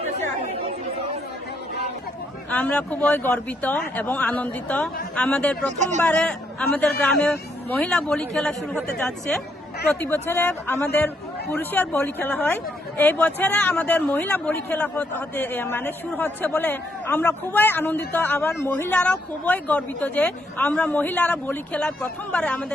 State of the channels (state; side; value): normal; both; correlation 0.74